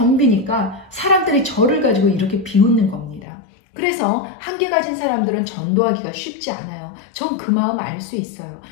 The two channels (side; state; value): right; drops out; at 3.2 s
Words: 사람들이 저를 가지고 이렇게 비웃는 겁니다. 그래서 1개 가진 사람들은 전도하기가 쉽지 않아요. 전 그 마음 알 수 있어요.